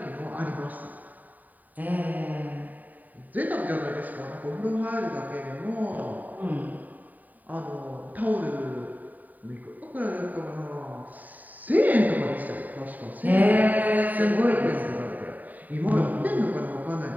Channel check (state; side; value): late; left; 0.082 ms